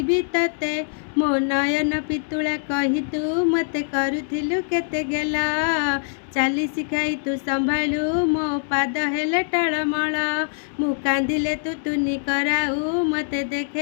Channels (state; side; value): silent; right; digital silence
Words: तते मो नयन पितुला कही तू मते करुथिलु केते गेला चाली शिखाई तू संभालु मो पाद हेले टळमळ मु कांदिले तू तुनी कराऊ मते